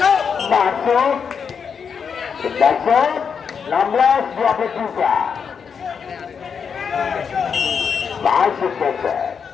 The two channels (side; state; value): right; quieter; 6.5 dB